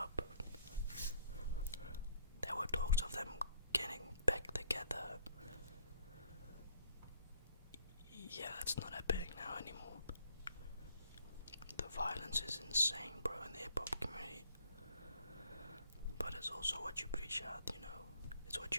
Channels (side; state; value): both; inverted; correlation -0.61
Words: There were talks of them getting back together. Yeah, that's not happening now anymore. The violence is insane, bro, in the hip-hop community. But it's also what you preach out, It's what